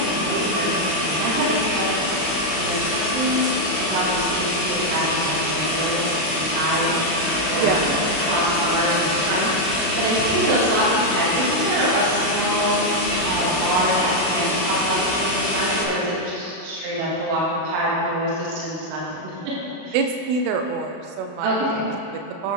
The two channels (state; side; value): late; left; 32 ms